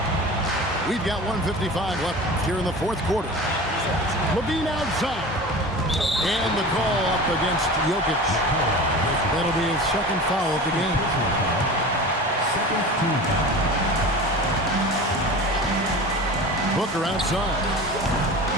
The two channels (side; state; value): both; normal; correlation 0.34